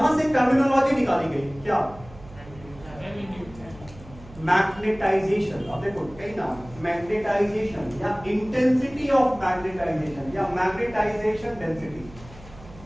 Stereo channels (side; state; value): right; noise; hum, 19 dB below the sound